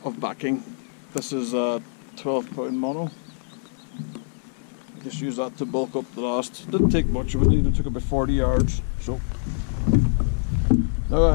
of backing. This is a 12-pound mono. Just use that to bulk up the last. Didn't take much of it, even took about 40 yards. So now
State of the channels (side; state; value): right; silent; 62 dB below the other